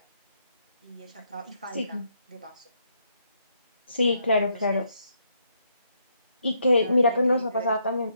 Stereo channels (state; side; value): inverted; both; correlation -0.75